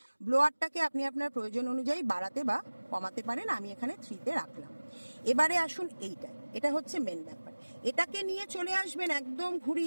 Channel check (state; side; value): inverted; both; correlation -1.00